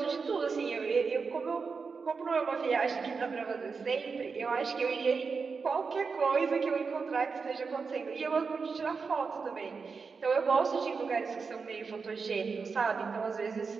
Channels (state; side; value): quieter; left; 5.0 dB